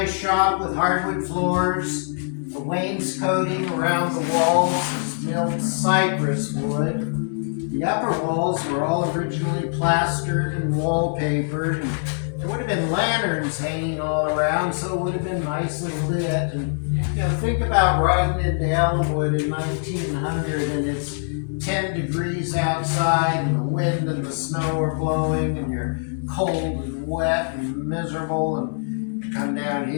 shop with hardwood floors, the wainscoting around the walls was milled cypress wood. The upper walls were all originally plastered and wallpapered, and there would have been lanterns hanging all around, so it would have been nicely lit. And think about riding into Ellinwood in 1900, and it's 10 degrees outside, and the wind and the snow are blowing, and you're cold and wet and miserable, and you come down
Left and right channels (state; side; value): silent; right; digital silence